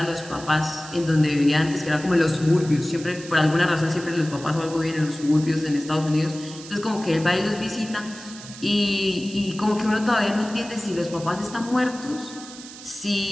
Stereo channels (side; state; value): right; noise; hiss, 15 dB below the sound